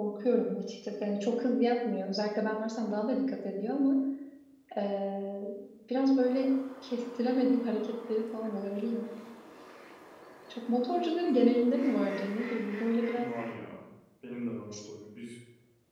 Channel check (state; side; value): identical; both; correlation 1.00